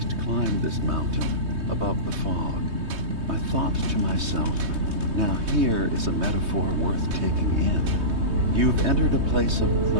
climbed this mountain above the fog, I thought to myself, now here is a metaphor worth taking in. You've entered a place of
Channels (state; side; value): late; left; 3.2 ms